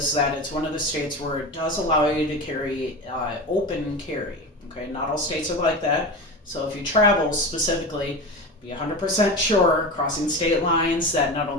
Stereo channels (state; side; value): normal; both; correlation 0.26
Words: that it's one of the states where it does allow you to carry open carry, okay? Not all states are like that. So if you travel specifically, be 100% sure, crossing state lines, that not